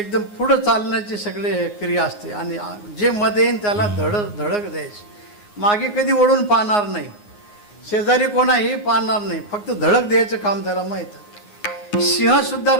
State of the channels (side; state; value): right; late; 9.6 ms